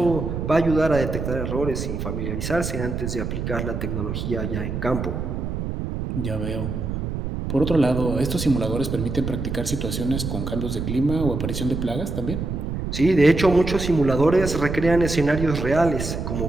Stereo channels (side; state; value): right; noise; rumble, 4 dB below the sound